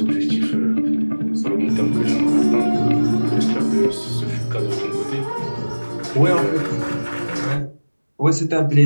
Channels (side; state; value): both; inverted; correlation -1.00